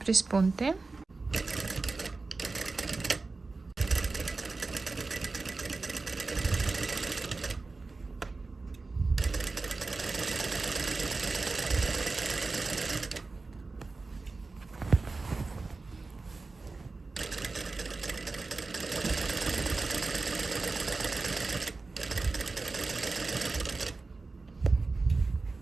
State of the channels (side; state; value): left; quieter; 3.7 dB